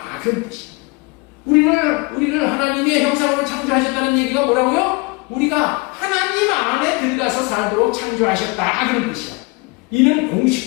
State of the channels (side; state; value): right; quieter; 27.4 dB